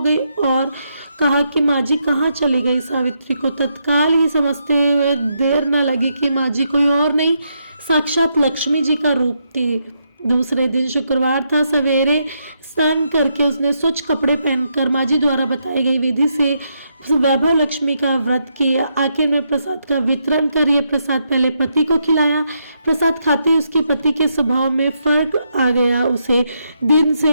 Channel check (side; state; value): both; inverted; correlation -0.79